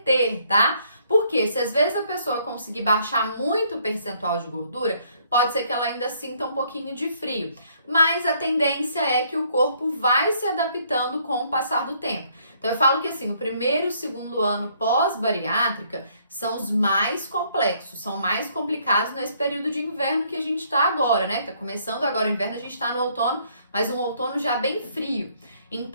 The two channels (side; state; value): both; inverted; correlation -0.66